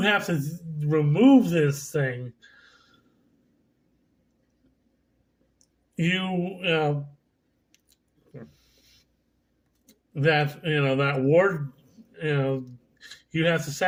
have to remove this thing, that ward, you have to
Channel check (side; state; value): both; identical; correlation 1.00